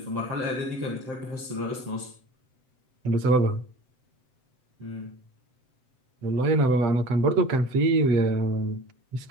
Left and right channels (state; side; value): late; left; 7.8 ms